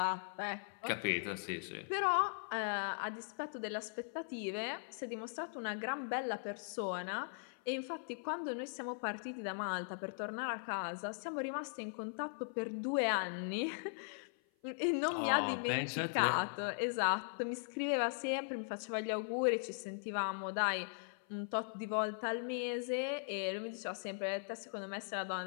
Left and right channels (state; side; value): silent; right; 51 dB below the other